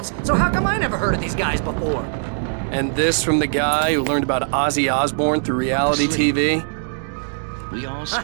so how come I never heard of these guys before? And this from the guy who learned about Ozzy Osbourne through reality TV? We all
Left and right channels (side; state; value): left; silent; digital silence